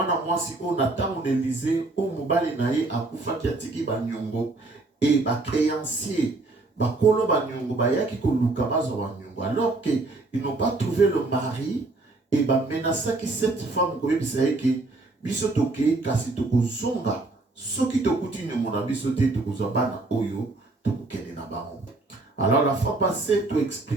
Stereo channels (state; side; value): quieter; left; 3.2 dB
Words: si on attend Élysée, on mobile naïe à Koufa qui a tiki banyongo et ba créancier, ba kolo banyongo, ba yaki koluka bazo banyongo. Alors qu'ils n'ont pas trouvé le mari, et ba menasa qui cette femme koye bisaye que biso toke kasi tokozonga soki tokuti nyomona biso te tokozabana oyo tokokende na bango. Alors la fois passée tu